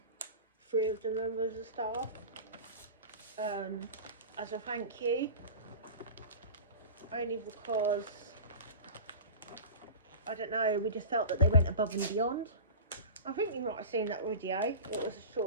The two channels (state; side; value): inverted; both; correlation -0.33